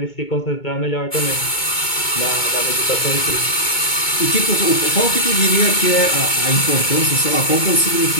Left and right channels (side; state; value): right; late; 2.2 ms